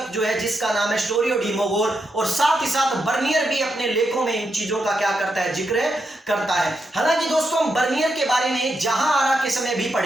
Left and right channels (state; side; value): normal; both; correlation 0.83